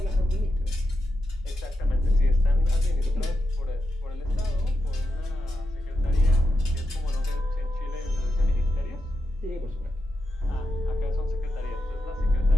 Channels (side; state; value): both; normal; correlation 0.86